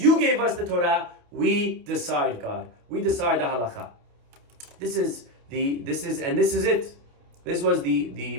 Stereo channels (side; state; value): left; late; 28 ms